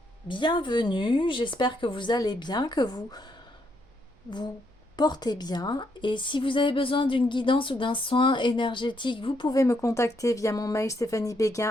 bienvenue, j'espère que vous allez bien, que vous portez bien. Et si vous avez besoin d'une guidance ou d'un soin énergétique, vous pouvez me contacter via mon mail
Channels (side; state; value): both; normal; correlation 0.75